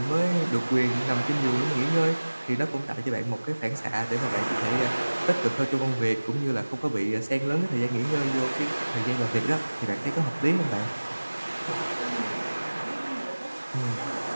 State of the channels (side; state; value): both; inverted; correlation -1.00